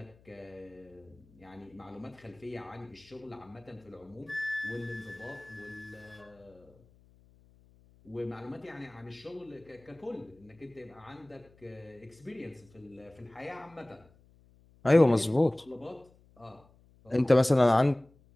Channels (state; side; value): noise; left; hum, 28 dB below the sound